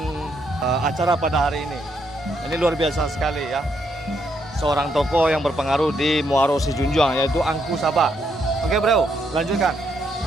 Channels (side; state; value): both; normal; correlation 0.76